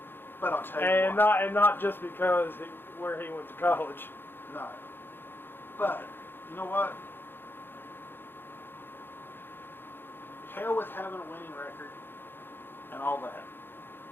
But I'll tell you what. And not just because where he went to college. No. But you know what? Hell with having a winning record and all that.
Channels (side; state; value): right; late; 0.10 ms